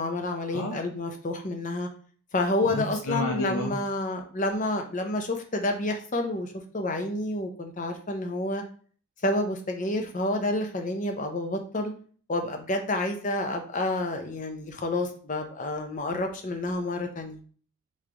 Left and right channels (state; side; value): normal; both; correlation 0.20